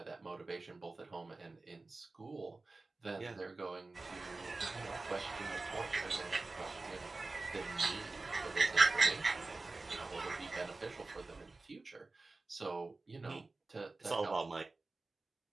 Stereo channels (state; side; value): quieter; left; 3.4 dB